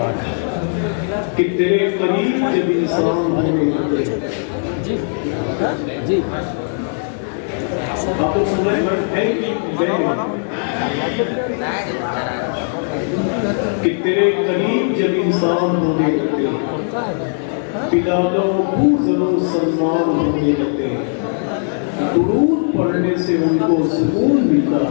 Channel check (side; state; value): right; silent; 67 dB below the other